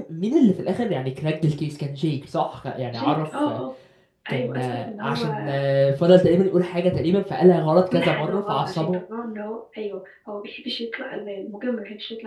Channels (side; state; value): both; identical; correlation 1.00